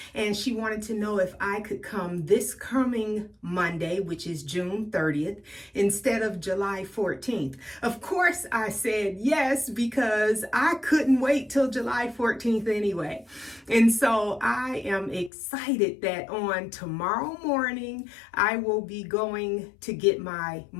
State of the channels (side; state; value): right; drops out; at 15.3 s